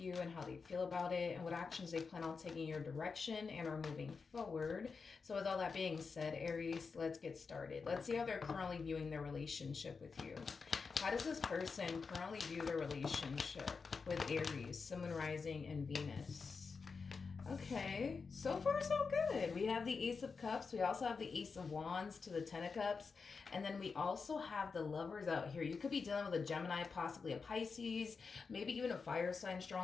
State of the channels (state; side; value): quieter; right; 5.0 dB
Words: and how they feel about it and what actions they plan on taking your direction and are moving forward. So, with all that being said, Aries, let's get started. Let's see how they're currently viewing their relationship with you. How does this person currently view their relationship with Aries, Sun, Moon, Rising, and Venus? Okay, so far so good. We have the Ace of Cups. We also have the Ace of Wands to the Ten of Cups. And then we also have the Lovers out here. You could be dealing with a Gemini, possibly a Pisces, maybe even a fire sign